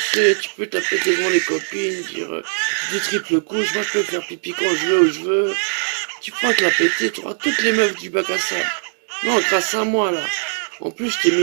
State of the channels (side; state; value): left; silent; digital silence